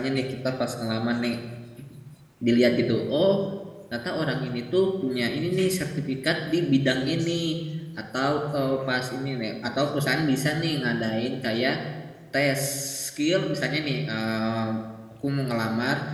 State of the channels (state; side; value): identical; both; correlation 1.00